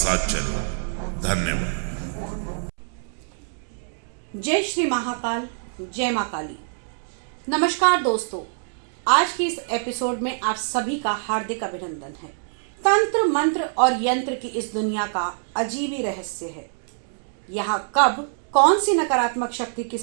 चले। धन्यवाद। जय श्री महाकाल, जय मां काली। नमस्कार दोस्तों, आज के इस एपिसोड में आप सभी का हार्दिक अभिनंदन है। तंत्र मंत्र और यंत्र की इस दुनिया का अजीब ही रहस्य है। यहाँ कब कौन सी नकारात्मक शक्ति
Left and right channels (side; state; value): left; silent; 62 dB below the other